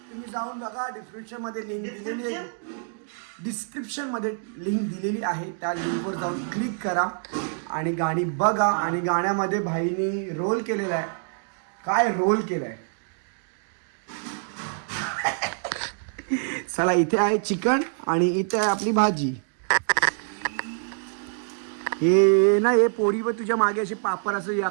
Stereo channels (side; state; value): left; silent; digital silence